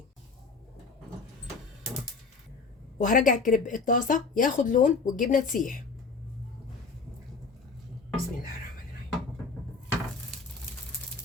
وهرجع الكريب الطاسه ياخد لون والجبنه تسيح. بسم الله الرحمن الرحيم.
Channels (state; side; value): quieter; right; 4.4 dB